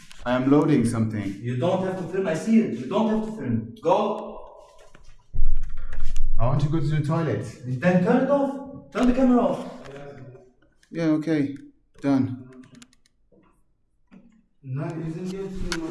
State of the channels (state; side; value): identical; both; correlation 1.00